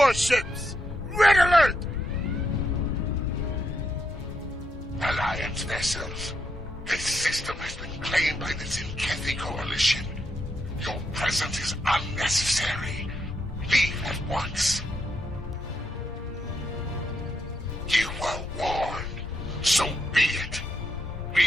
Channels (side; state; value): both; normal; correlation 0.80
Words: Red alert! Alliance vessels. This system has been claimed by the Tzenkethi Coalition. Your presence is unnecessary. Leave at once. You were warned. So be it.